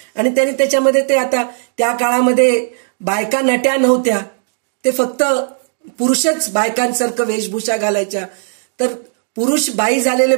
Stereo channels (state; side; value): silent; left; digital silence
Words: आणि त्यांनी त्याच्यामध्ये ते आता त्या काळामध्ये बायका नट्या नव्हत्या, ते फक्त पुरुषच बायकांसारखं वेशभूषा घालायच्या. तर पुरुष बाई झालेले